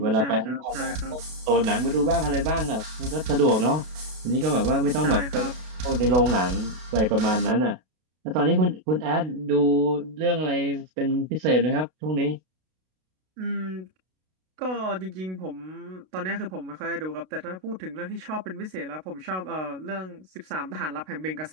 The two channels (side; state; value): left; late; 32 ms